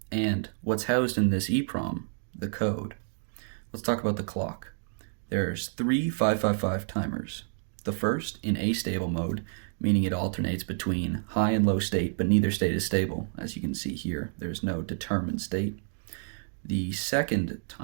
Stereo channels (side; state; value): left; silent; digital silence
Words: and what's housed in this EEPROM, the code. Let's talk about the clock. There's 3 555 timers. The first in astable mode, meaning it alternates between high and low state, but neither state is stable. As you can see here, there's no determined state. The second